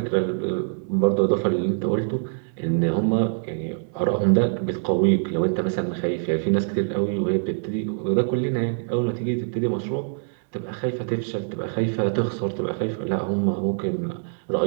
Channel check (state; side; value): silent; left; 62 dB below the other